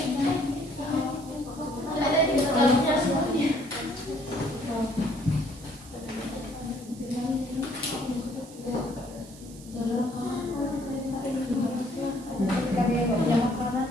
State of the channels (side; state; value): right; noise; hiss, 20 dB below the sound